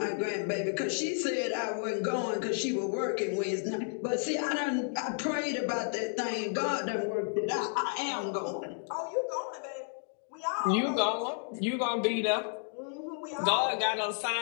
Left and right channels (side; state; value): right; silent; 56 dB below the other